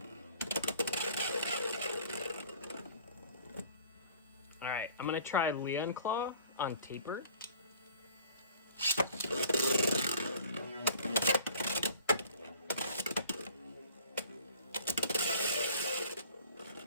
Alright, I'm gonna try Leon Claw on taper.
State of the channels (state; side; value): inverted; both; correlation -0.50